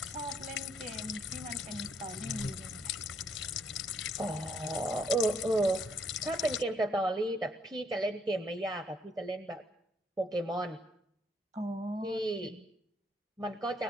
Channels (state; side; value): normal; both; correlation 0.70